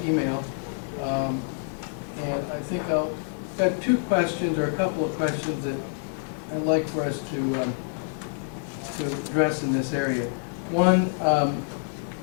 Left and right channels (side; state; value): right; silent; 60 dB below the other